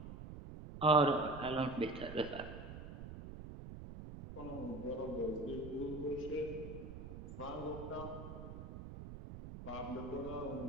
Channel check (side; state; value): right; noise; rumble, 10 dB below the sound